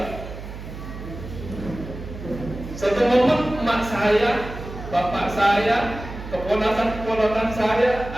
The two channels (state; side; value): noise; right; hum, 11 dB below the sound